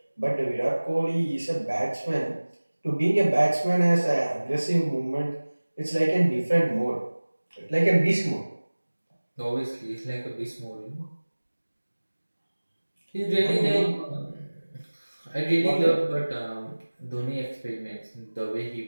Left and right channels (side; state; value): both; inverted; correlation -1.00